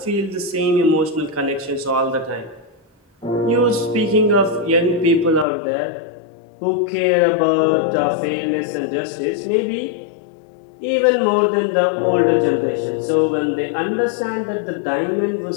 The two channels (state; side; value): drops out; right; at 5.5 s